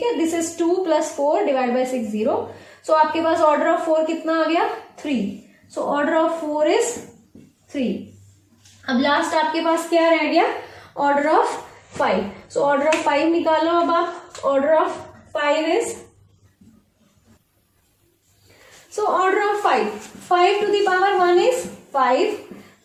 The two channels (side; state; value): both; identical; correlation 1.00